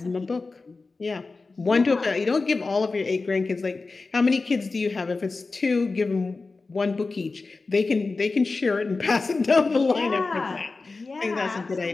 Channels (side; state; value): right; quieter; 3.8 dB